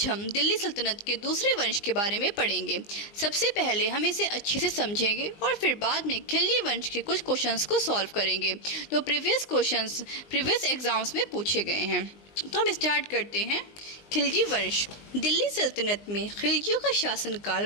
हम दिल्ली सल्तनत के दूसरे वंश के बारे में पढ़ेंगे। सबसे पहले हम इसे अच्छे से समझेंगे और फिर बाद में खिलजी वंश के कुछ क्वेश्चंस को सॉल्व करेंगे जो प्रीवियस एग्जाम्स में पूछे गए हैं। तो हम स्टार्ट करते हैं। खिलजी वंश। दिल्ली सल्तनत में खिलजियों का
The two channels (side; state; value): right; late; 20 ms